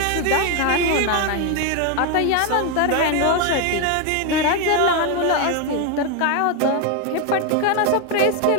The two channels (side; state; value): both; different; correlation 0.01